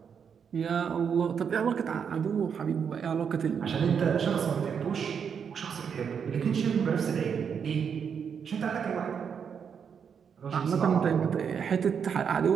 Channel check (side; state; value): left; quieter; 7.0 dB